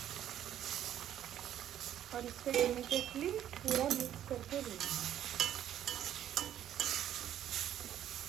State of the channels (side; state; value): left; quieter; 11.0 dB